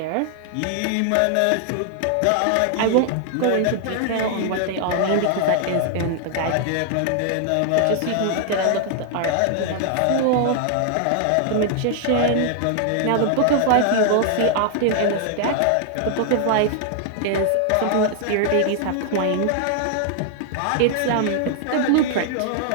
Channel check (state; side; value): different; both; correlation 0.00